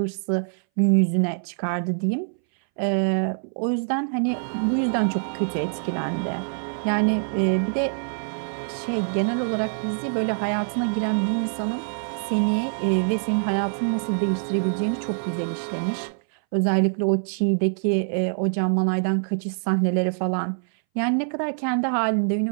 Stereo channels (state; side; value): silent; left; 61 dB below the other